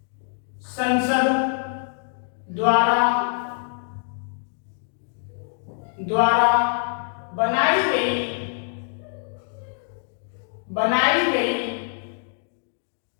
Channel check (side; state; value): right; silent; 59 dB below the other